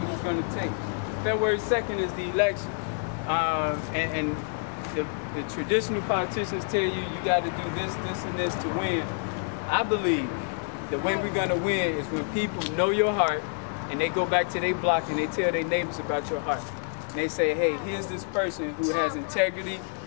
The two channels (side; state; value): right; silent; 59 dB below the other